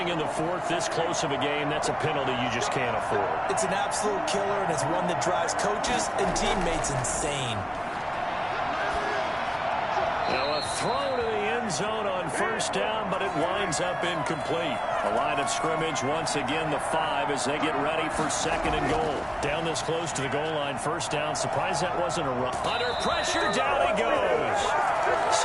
in the 4th, this close of a game, that's a penalty you just can't afford. It's an absolute killer, and it's one that drives coaches and teammates insane. Now a throw to the end zone on first down, but it winds up incomplete. The line of scrimmage once again the 5 as they get ready for 2nd and goal. Down this close to the goal line, first down. Surprised that wasn't a run. Under pressure, down he goes.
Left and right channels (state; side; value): identical; both; correlation 1.00